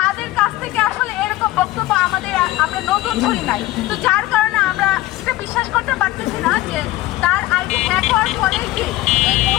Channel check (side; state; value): right; quieter; 17.0 dB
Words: কাছ থেকে আসলে এরকম বক্তব্য আমরা নতুন শুনি নাই। তো যার কারণে আমরা এটা বিশ্বাস করতে পারতেছি না যে তার আইডি হ্যাক হওয়ার পরে কি এই